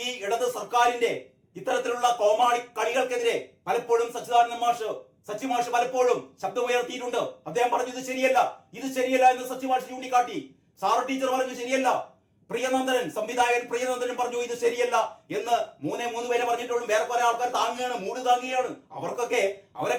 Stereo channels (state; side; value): identical; both; correlation 1.00